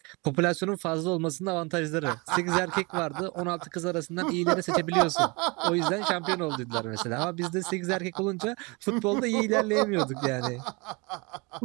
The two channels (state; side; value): quieter; left; 28.1 dB